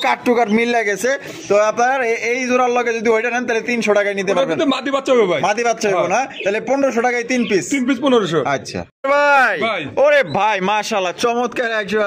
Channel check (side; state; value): both; identical; correlation 1.00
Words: কাট টু কাট মিল লাগেছে তো আপনার এই জোড়ার লগে যদি ওইটা নেন তাহলে 300 টাকায় নিতে পারবেন। মাদি বাচ্চা হবে ভাই। মাদি বাচ্চা হবে না? তাহলে 1500 টাকায় 3 পিস 1500। আচ্ছা ভাই। ওরে ভাই মাশাআল্লাহ চমৎকার একজোড়া